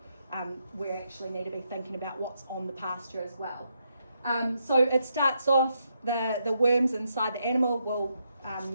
we actually need to be thinking about what's on the pasture as well. So it starts off, the worms inside the animal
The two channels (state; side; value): inverted; both; correlation -0.80